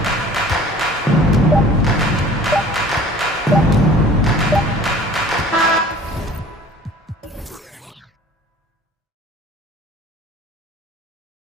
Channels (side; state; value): both; normal; correlation 0.47